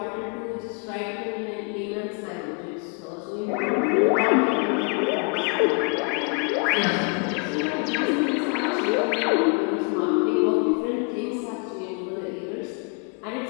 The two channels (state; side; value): quieter; right; 35.0 dB